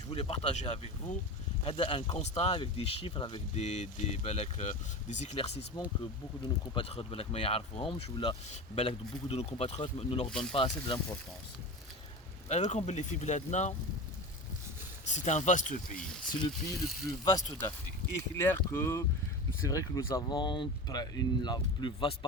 Je voulais partager avec vous un constat avec des chiffres, avec des éclaircissements que beaucoup de nos compatriotes beaucoup de nos compatriotes ne leur donnent pas assez d'importance. C'est un vaste pays. C'est le pays le plus vaste d'Afrique. Et clair que c'est vrai que nous avons la plus vaste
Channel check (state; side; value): normal; both; correlation 0.28